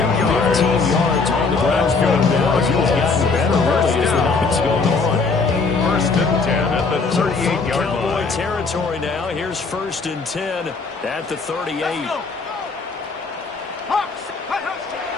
yards on the ground going down. He's gotten better really as the night's going on. 1st and 10 at the 38-yard line. Cowboy territory now. Here's 1st and 10 at the 38.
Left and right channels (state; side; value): quieter; right; 4.3 dB